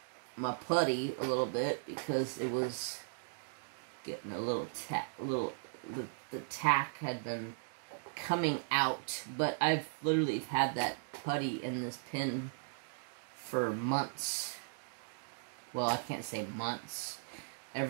my putty a little bit, because it was getting a little the tack had been coming out, but I've literally had that putty in this pen for months. Well, I can't say months.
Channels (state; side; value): silent; left; digital silence